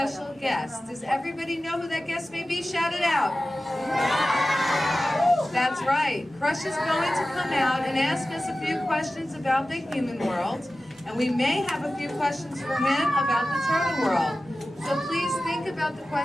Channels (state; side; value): normal; both; correlation 0.95